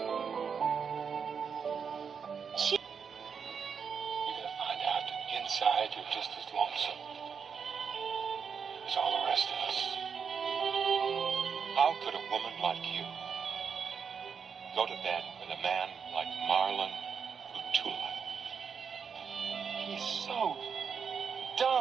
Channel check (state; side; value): quieter; left; 6.4 dB